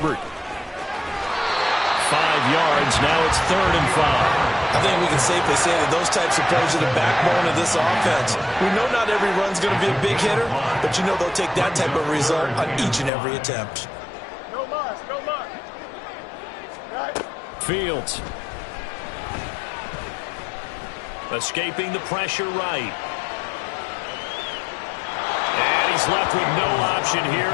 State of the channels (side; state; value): right; drops out; at 13.1 s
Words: 5 yards. Now it's 3rd and 5. I think we can safely say that those types of plays are the backbone of this offense. We know not every run's going to be a big hitter, but you know they'll take that type of result on each and every attempt. No muss, no muss. Right. Fields. Escaping the pressure right. And he's left with no option here